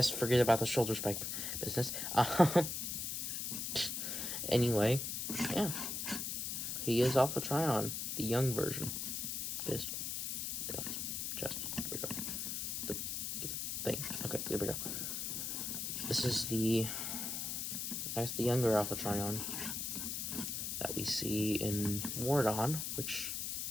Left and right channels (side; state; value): left; noise; hiss, 2 dB below the sound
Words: forget about the shoulder spike business. Anyway, yeah. He is Alpha Trion, the young version. Yes. Take off his chest. There we go. Get the thing. Okay, there we go. This is the, I guess, the younger Alpha Trion that we see in Wardon, which,